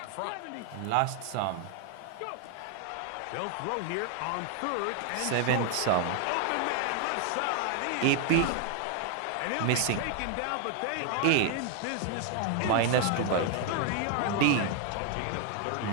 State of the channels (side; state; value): both; different; correlation 0.00